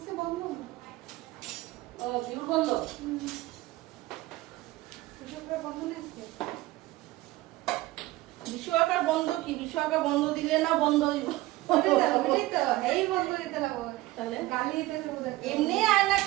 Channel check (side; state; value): left; quieter; 18.3 dB